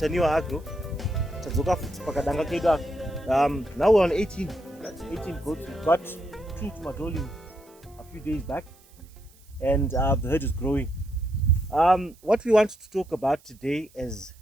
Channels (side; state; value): right; noise; hiss, 28 dB below the sound